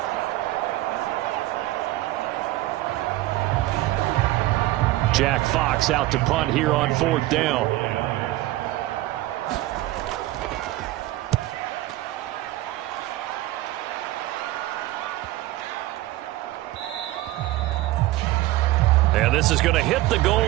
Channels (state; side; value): quieter; left; 16.8 dB